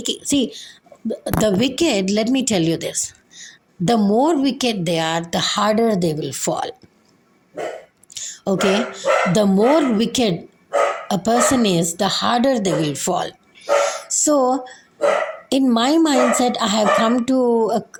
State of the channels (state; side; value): identical; both; correlation 1.00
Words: see, the wicked, let me tell you this, the more wicked they are, the harder they will fall. Okay? The more wicked a person is, the harder they will fall. So, in my mindset, I have come to